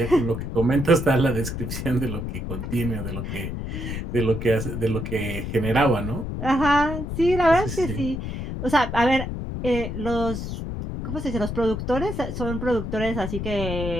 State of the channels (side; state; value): left; noise; rumble, 5 dB below the sound